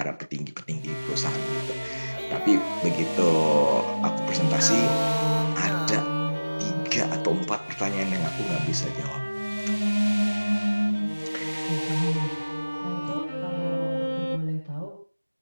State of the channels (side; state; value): both; inverted; correlation -1.00